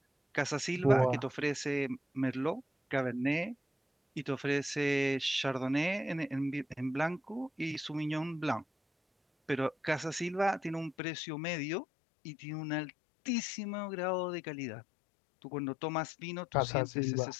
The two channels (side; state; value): right; drops out; at 11.0 s